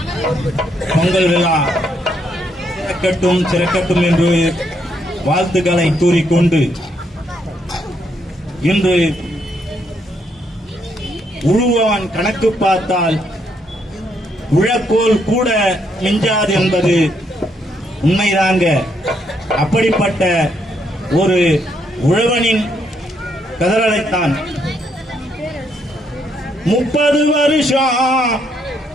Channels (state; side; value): normal; both; correlation 0.74